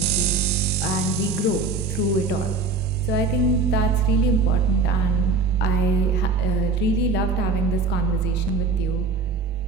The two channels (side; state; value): left; quieter; 4.1 dB